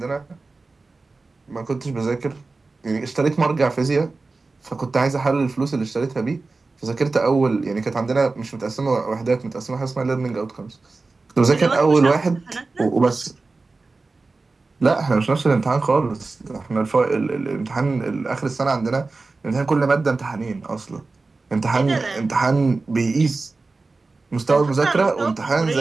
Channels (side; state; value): left; quieter; 3.7 dB